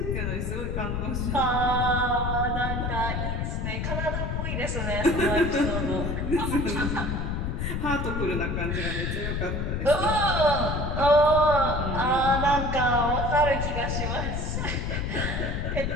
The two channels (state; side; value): noise; left; rumble, 1 dB below the sound